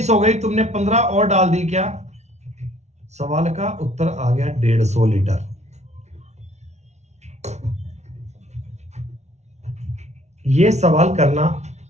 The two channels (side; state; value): left; late; 0.32 ms